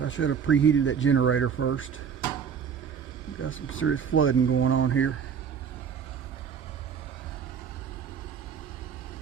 should have preheated that generator first. We've got some serious flooding going on here.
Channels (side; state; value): left; quieter; 7.1 dB